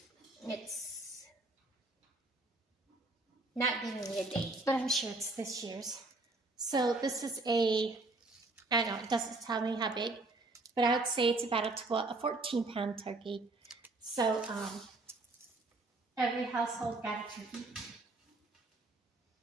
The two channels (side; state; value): left; quieter; 3.0 dB